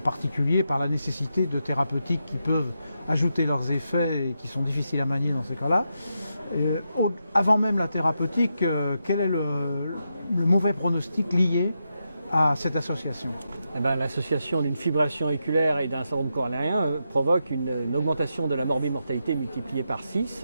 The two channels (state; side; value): inverted; both; correlation -0.85